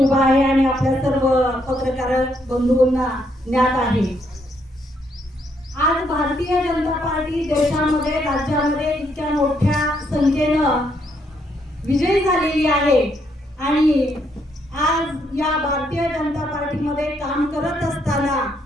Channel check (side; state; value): both; normal; correlation 0.74